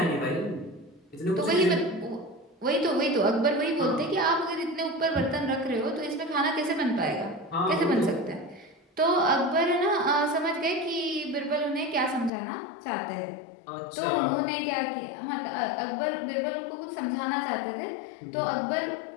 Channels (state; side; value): drops out; right; at 12.3 s